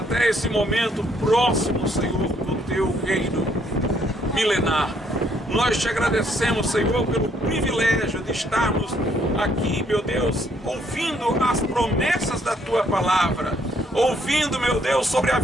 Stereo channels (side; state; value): both; normal; correlation 0.68